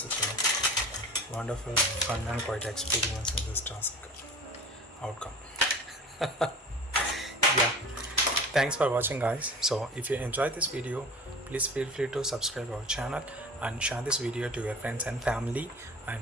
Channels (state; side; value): normal; both; correlation 0.39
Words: a wonderful, fun and quite experience in this task outcome. Yeah. Thanks for watching, guys. So if you enjoyed this video, please feel free to subscribe our channel and share this video to your friends and family,